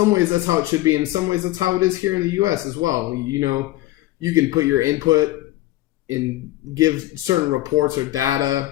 ways, that's how it should be. In some ways, that's how it is here in the U.S. as well. You can put your input and give certain reports or data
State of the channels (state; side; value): quieter; right; 16.6 dB